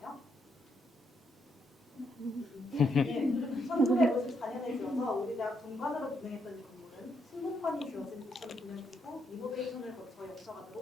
네, 1954년에 지어서 우리 대학 본관으로 분행했던 이 건물은 신문관이 지어진 2009년 이후 리노베이션을 거쳐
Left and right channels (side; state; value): both; normal; correlation 0.77